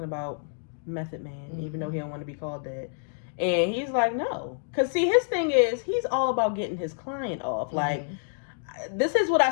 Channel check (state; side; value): silent; right; digital silence